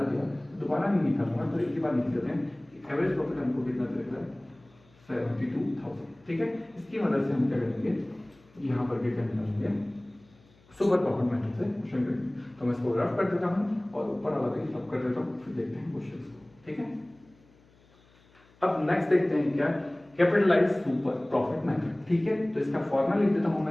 दिया, दोबारा नहीं निकालूंगा, तो एक ही बार निकाल देते हैं कि एवरेज प्रॉफिट हमको कितना दे रहा है, 72,000, ठीक है। इसकी मदद से हम क्या करेंगे, यहाँ पर क्या निकालेंगे, सुपर प्रॉफिट मेथड से क्वेश्चन करेंगे। तो मैं इसको रफ कर देता हूँ और ऊपर वाला भी रफ कर देता हूँ, फिर देखते हैं क्वेश्चन को, ठीक है। अब नेक्स्ट देखते हैं क्या, कैपिटलाइज सुपर प्रॉफिट मेथड, ठीक है। तो इसका फॉर्मूला लिख देता हूं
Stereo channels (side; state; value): left; noise; hum, 30 dB below the sound